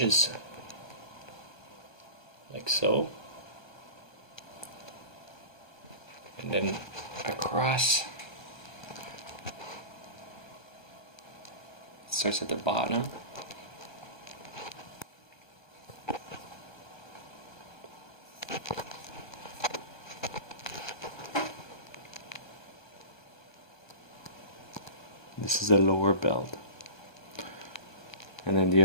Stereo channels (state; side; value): late; right; 1.3 ms